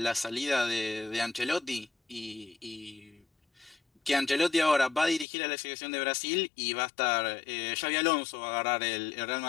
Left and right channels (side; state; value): right; drops out; at 5.2 s